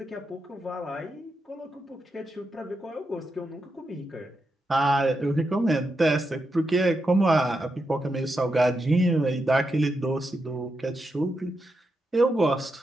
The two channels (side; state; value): both; normal; correlation 0.86